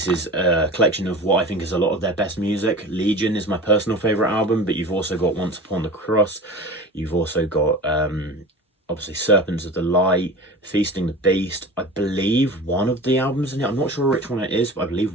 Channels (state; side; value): normal; both; correlation 0.34